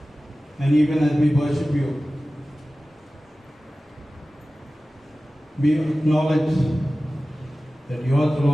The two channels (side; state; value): both; normal; correlation 0.96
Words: And even as we worship you, we acknowledge that yours,